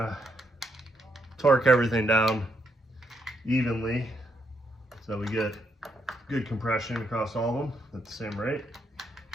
of torque everything down evenly so we get good compression across all of them at the same rate.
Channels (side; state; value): both; normal; correlation 0.77